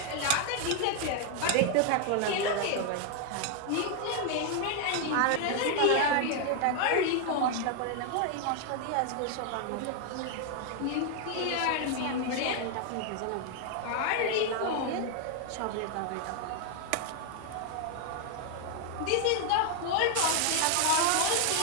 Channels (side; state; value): both; different; correlation 0.00